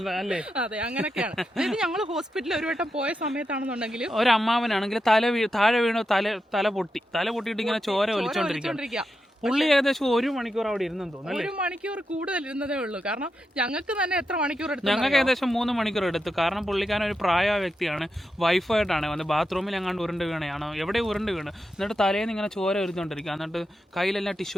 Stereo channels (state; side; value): normal; both; correlation 0.87